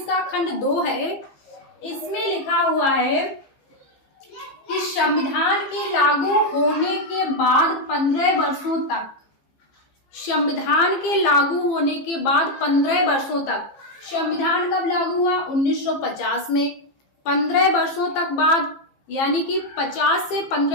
का खंड 2 है, इसमें लिखा हुआ है कि संविधान के लागू होने के बाद 15 वर्षों तक, संविधान के लागू होने के बाद 15 वर्षों तक, संविधान कब लागू हुआ 1950 में, 15 वर्षों तक बाद, यानी कि 50 से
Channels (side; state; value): right; late; 15 ms